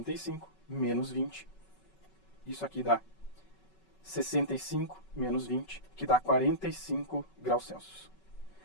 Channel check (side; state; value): right; late; 5.3 ms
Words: menos 20. Isso aqui dá 65 menos 20, que dá 45 graus Celsius.